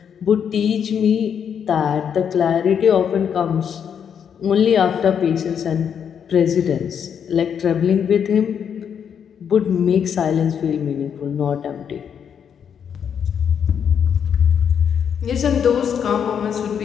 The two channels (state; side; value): quieter; right; 7.8 dB